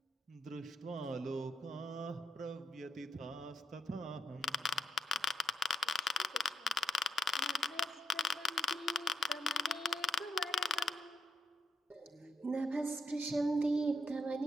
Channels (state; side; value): normal; both; correlation 0.79